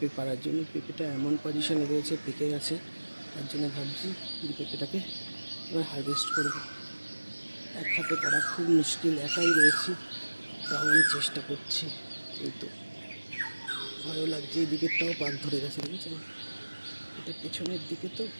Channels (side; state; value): both; inverted; correlation -1.00